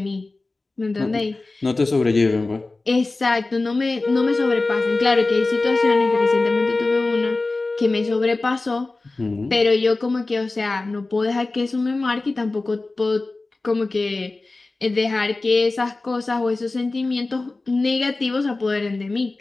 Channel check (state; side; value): quieter; right; 3.3 dB